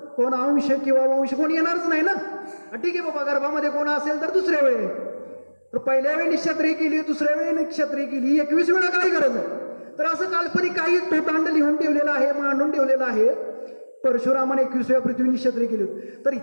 कोण अंश किंवा वंश कोण येणारच नाही ना. ठीक आहे बाबा, गर्भामध्ये कोण असेल तर दुसऱ्या वेळी, तर पहिल्या वेळी निक्षत्रिय केली, दुसऱ्या वेळी निक्षत्रिय केली, 21 वेळा काय गरज आहे? तर असं काल्पनिक काही तोटांड लिहून ठेवलेलं आहे, मांडून ठेवलेलं आहे. परशुरामाने 21 वेळा पृथ्वी निक्षत्रिय केली होती. तर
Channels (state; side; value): inverted; both; correlation -1.00